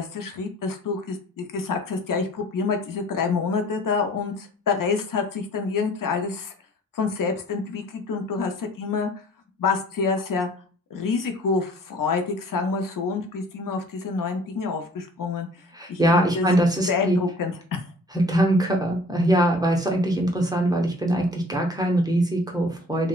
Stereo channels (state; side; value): normal; both; correlation 0.51